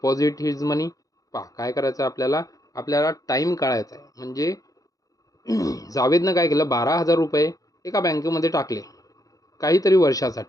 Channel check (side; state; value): right; late; 0.17 ms